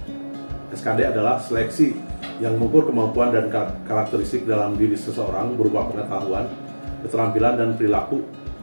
SKD adalah seleksi yang mengukur kemampuan dan karakteristik dalam diri seseorang berupa pengetahuan, keterampilan, dan perilaku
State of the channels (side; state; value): both; inverted; correlation -1.00